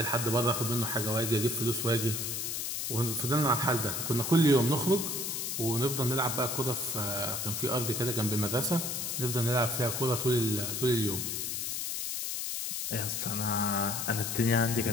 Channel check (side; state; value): left; noise; hiss, 2 dB below the sound